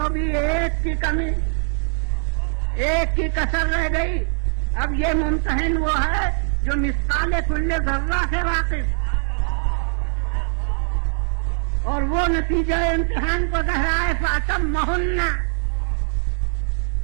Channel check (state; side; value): silent; left; 64 dB below the other